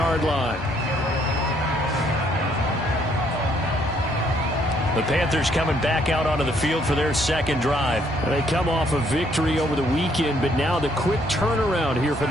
line. The Panthers coming back out onto the field for their second drive. They come off a victory over the weekend, but now the quick turnaround here for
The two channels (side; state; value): both; normal; correlation 0.68